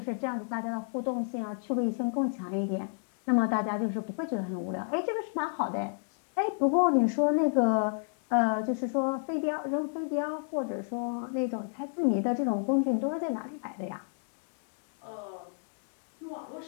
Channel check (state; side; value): silent; right; 57 dB below the other